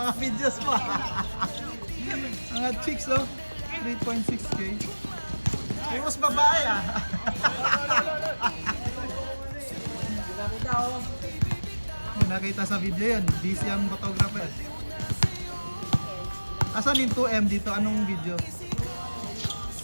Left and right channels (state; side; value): inverted; both; correlation -1.00